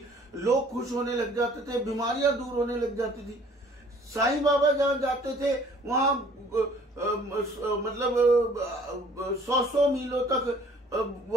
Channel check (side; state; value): both; normal; correlation 0.55